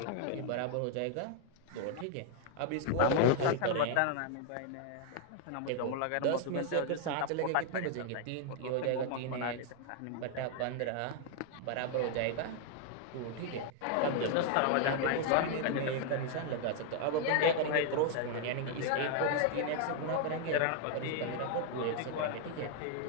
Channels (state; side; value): different; both; correlation 0.00